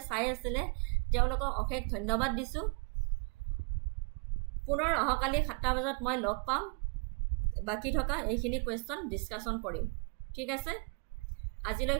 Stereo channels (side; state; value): left; quieter; 34.2 dB